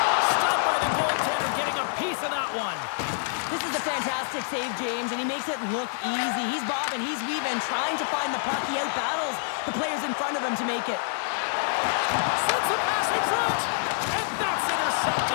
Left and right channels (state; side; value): silent; right; digital silence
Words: Stopped by the goaltender, getting a piece of that one. This is a fantastic save, James, and he makes it look easy. He's bobbing, he's weaving, trying to find the puck. He outbattles the players in front of him to make it. Sends the pass in front, and that's